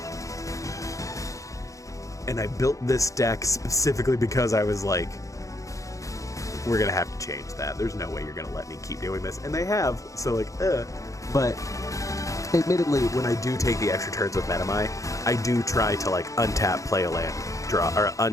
And I built this deck specifically because I was like, we're gonna have to change that. There's no way you're gonna let me keep doing this. And they have, so like, But admittedly, when I do take the extra turns with Metamai, I do try to like untap, play a land, draw, or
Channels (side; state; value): right; late; 0.16 ms